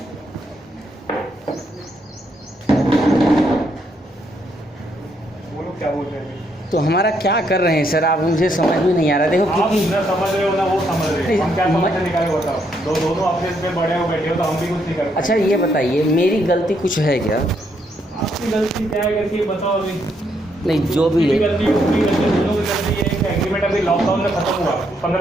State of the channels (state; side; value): normal; both; correlation 0.75